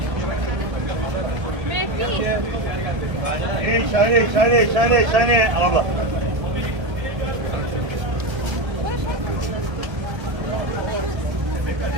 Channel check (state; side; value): late; left; 1.0 ms